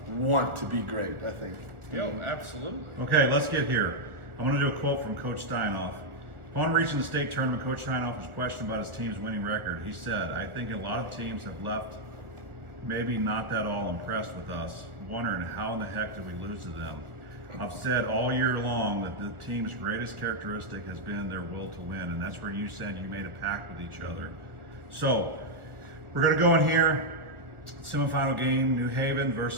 want to be great. I think. Absolutely. Okay, let's get here. I want to do a quote from Coach Steinoff. Upon reaching the state tournament, Coach Steinoff was questioned about his team's winning record. He said, I think a lot of teams have left maybe not that all impressed with us, wondering how in the heck did we lose to them. I've said all year long that the team's greatest characteristic has been their will to win, and that's where you said you made a pact with each other. So, we're going to go in here. Semifinal game, New Haven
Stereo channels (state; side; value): late; left; 1.5 ms